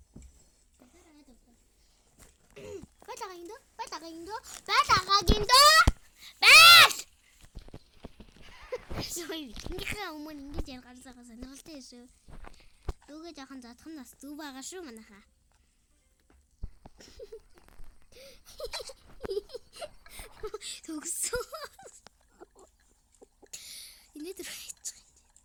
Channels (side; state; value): both; identical; correlation 1.00